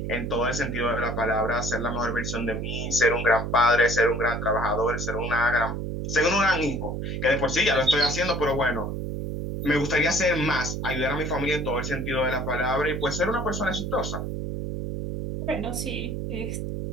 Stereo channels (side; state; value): right; noise; hum, 4 dB below the sound